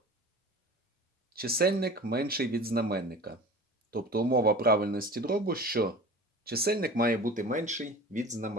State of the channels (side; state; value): both; normal; correlation 0.38